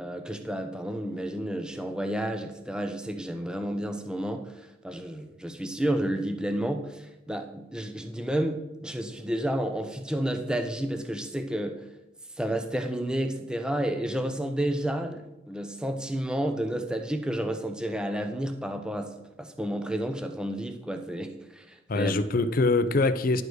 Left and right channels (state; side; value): normal; both; correlation 0.75